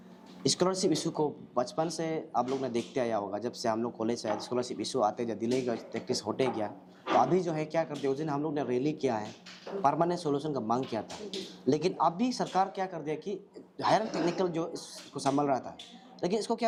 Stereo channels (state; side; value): identical; both; correlation 1.00